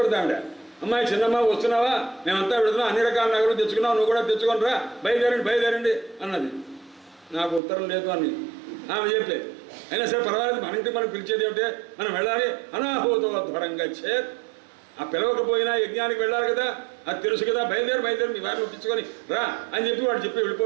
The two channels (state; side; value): drops out; left; at 7.6 s